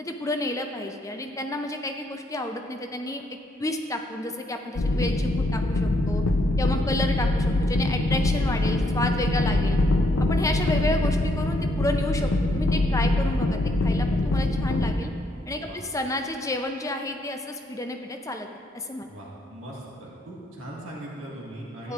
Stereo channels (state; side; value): normal; both; correlation 0.73